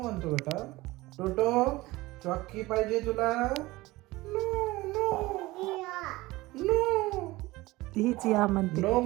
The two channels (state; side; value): quieter; left; 19.9 dB